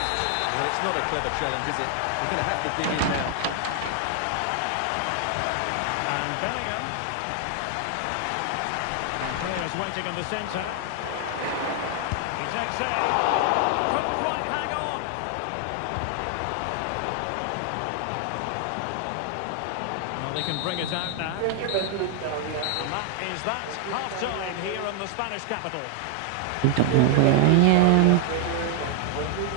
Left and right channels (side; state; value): both; different; correlation 0.00